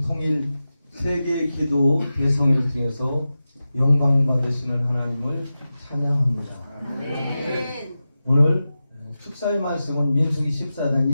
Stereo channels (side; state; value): both; inverted; correlation -0.93